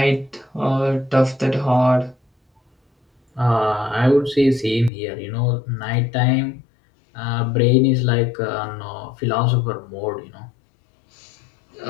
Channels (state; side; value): drops out; right; at 4.9 s